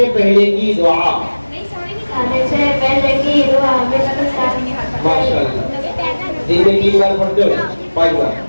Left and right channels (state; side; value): inverted; both; correlation -1.00